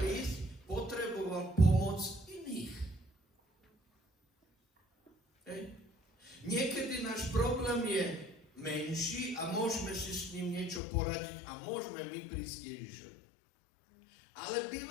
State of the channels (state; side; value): drops out; right; at 10.8 s